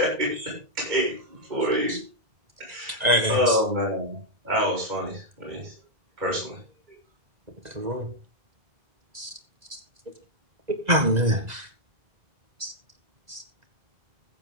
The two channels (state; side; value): late; left; 2.0 ms